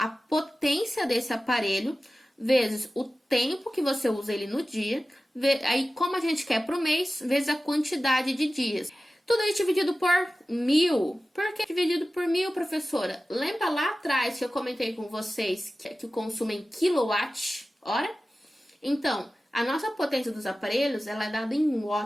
potência desse aparelho vezes o tempo que você usa ele no dia, aí como a gente quer para o mês, vezes a quantidade de dias. Tudo isso dividido por 1000. Por que dividido por 1000, professora? Lembra lá atrás que eu comentei com vocês que o consumo é em quilowatt-hora? Então, a nossa potência dos aparelhos ela é dada em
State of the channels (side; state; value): both; normal; correlation 0.95